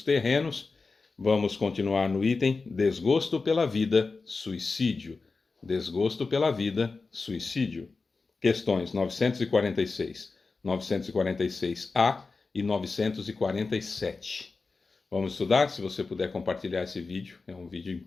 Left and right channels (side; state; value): right; quieter; 4.1 dB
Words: Terrenos. Vamos continuar no item Desgosto pela Vida, Suicídio. Desgosto pela Vida, Suicídio. Questões 946, 946A e 947. Vamos estudar? Se você puder compartilhar esse vídeo, é um vídeo